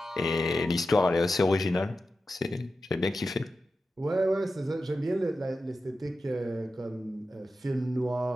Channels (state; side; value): normal; both; correlation 0.92